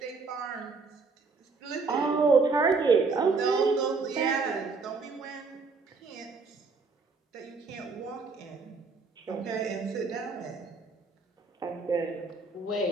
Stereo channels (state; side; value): quieter; left; 4.3 dB